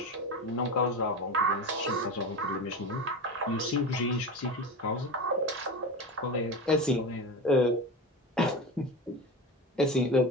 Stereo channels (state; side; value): normal; both; correlation 0.25